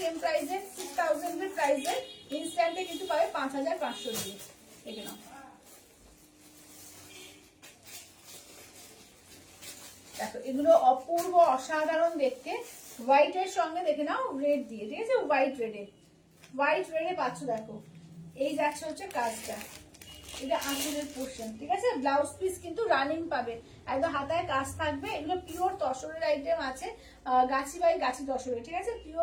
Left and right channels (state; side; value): identical; both; correlation 1.00